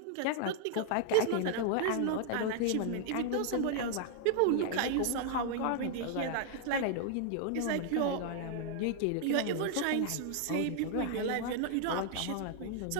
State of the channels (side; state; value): both; different; correlation -0.01